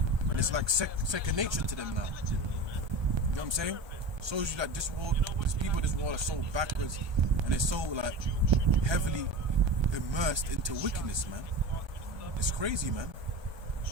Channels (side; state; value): left; late; 1.2 ms